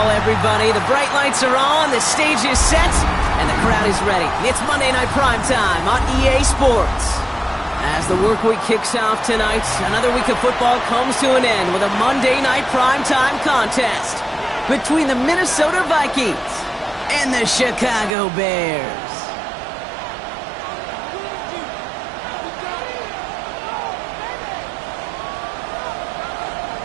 everybody. The bright lights are on, the stage is set, and the crowd is ready. It's Monday Night Primetime on EA Sports. As the work week kicks off tonight, another week of football comes to an end with a Monday Night Primetime contest between the Minnesota Vikings and the Chicago Bears.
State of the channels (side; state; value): left; drops out; at 18.2 s